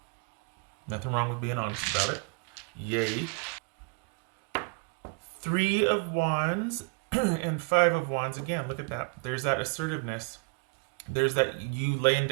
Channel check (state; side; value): quieter; left; 37.0 dB